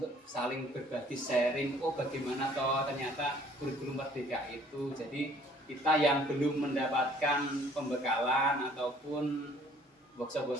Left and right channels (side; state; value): both; normal; correlation 0.57